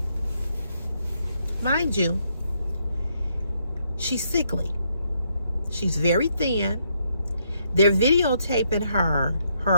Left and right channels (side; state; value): both; inverted; correlation -0.75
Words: she's sickly. She's very thin. They're videotaping her